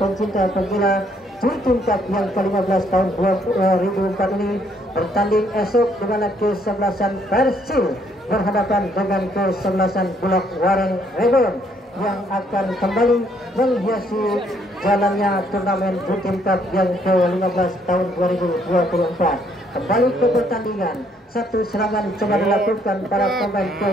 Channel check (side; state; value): both; normal; correlation 0.68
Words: penggila Chultin Cup yang ke-15 tahun 2004 ini bertanding esok di mana ke-11an Persil berhadapan dengan ke-11an Bulak Wareng Rebon yang akan kembali menghiasi jalannya turnamen Chultin Cup yang ke-15 tahun 2024. Kembali ke pertandingan, satu serangan coba dilakukan para pemain